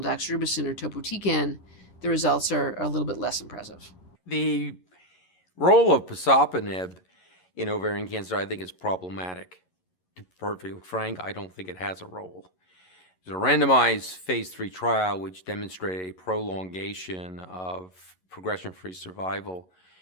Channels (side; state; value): right; late; 11 ms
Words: doxorubicin or topotecan, the results are a little bit less impressive. The role of pazopanib in ovarian cancer, I think, is problematic. To be perfectly frank, I don't think it has a role. There's a randomized phase 3 trial which demonstrated a prolongation of progression-free survival